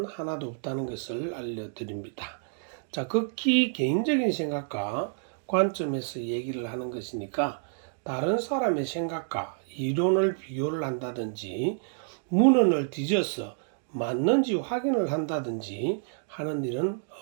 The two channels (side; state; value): left; silent; digital silence